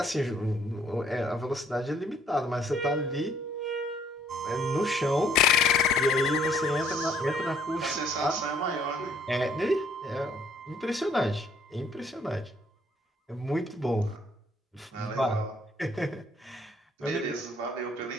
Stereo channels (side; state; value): both; normal; correlation 0.63